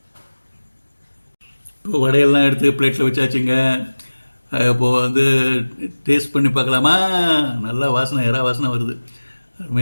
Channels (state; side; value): inverted; both; correlation -1.00